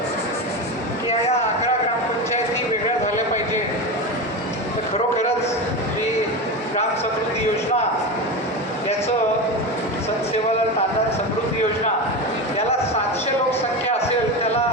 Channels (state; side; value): normal; both; correlation 0.21